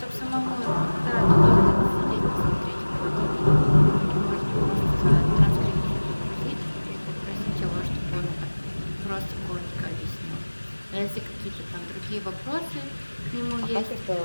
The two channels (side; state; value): both; inverted; correlation -1.00